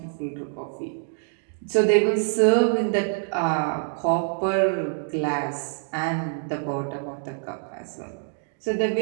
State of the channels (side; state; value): left; silent; digital silence